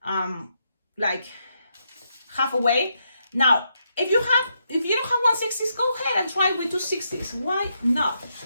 like halfway. Now, if you don't have 160s, go ahead and try with 260s. Why not?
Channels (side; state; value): both; inverted; correlation -0.80